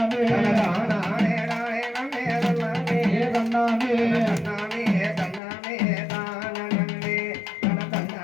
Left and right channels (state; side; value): drops out; right; at 5.4 s